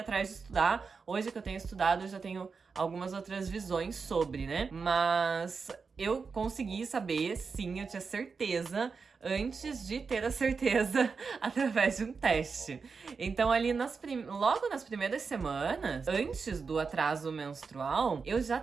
de estudar. Hoje que eu tenho estudado, eu já tenho algumas outras visões sobre, né? Mas eu consegui saber, sim, eu tinha certeza, antes de ter a certeza através de um teste. Então ali logo nas primeiras semanas, antes do atraso menstrual, eu já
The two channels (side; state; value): left; quieter; 5.1 dB